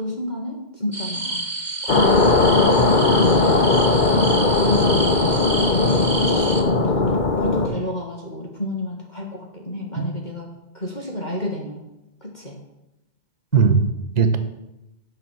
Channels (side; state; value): right; late; 2.1 ms